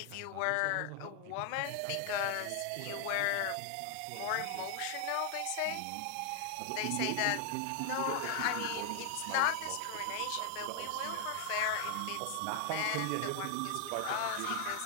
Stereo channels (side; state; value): both; different; correlation 0.00